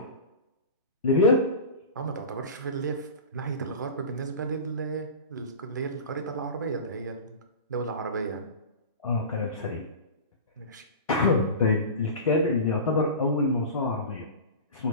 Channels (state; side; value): inverted; both; correlation -0.31